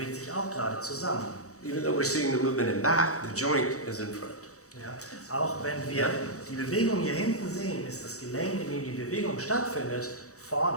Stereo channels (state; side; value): late; right; 0.65 ms